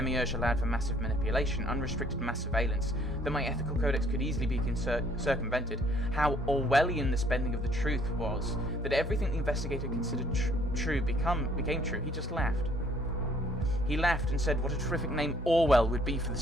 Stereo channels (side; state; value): both; normal; correlation 0.62